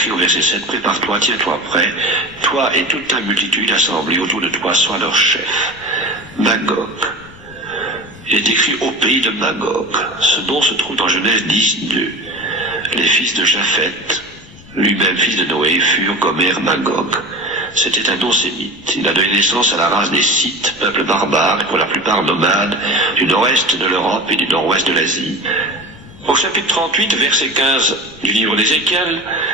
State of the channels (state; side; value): noise; left; rumble, 24 dB below the sound